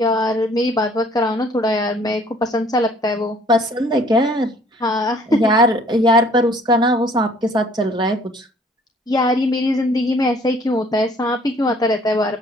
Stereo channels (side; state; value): both; normal; correlation 0.57